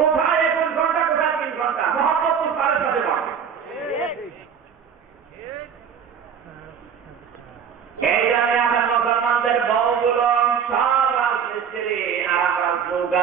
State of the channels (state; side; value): quieter; left; 7.4 dB